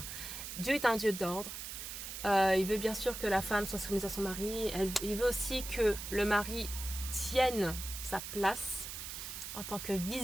Dieu est un Dieu d'ordre. Il veut bien sûr que la femme soit soumise à son mari. Il veut aussi que le mari tienne sa place en tant que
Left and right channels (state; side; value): noise; right; hiss, 8 dB below the sound